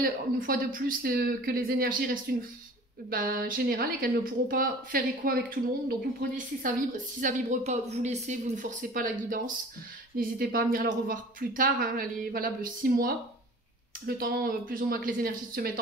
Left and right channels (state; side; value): normal; both; correlation 0.44